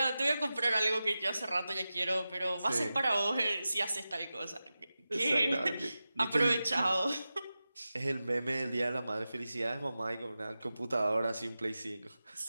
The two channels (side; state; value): both; inverted; correlation -0.94